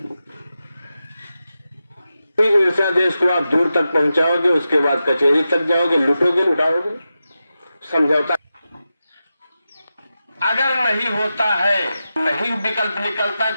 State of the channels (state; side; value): inverted; both; correlation -0.91